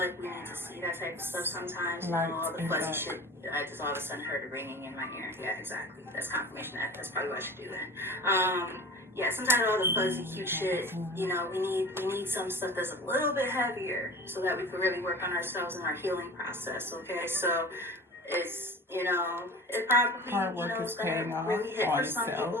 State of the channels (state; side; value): normal; both; correlation 0.38